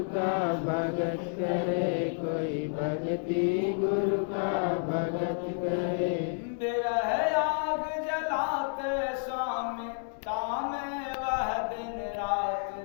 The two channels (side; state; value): right; silent; digital silence